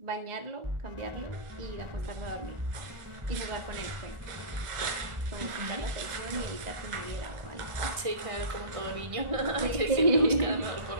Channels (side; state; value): left; late; 1.4 ms